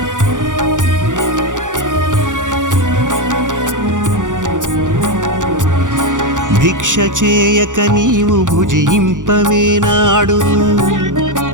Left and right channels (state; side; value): late; left; 0.87 ms